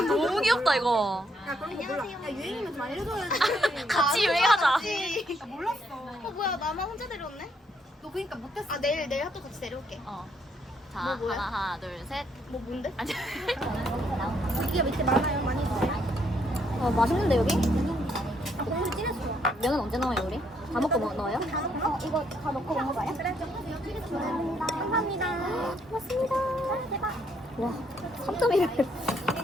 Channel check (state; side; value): normal; both; correlation 0.72